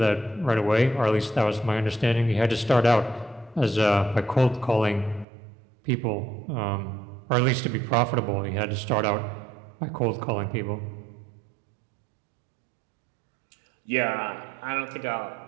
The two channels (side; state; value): left; drops out; at 5.2 s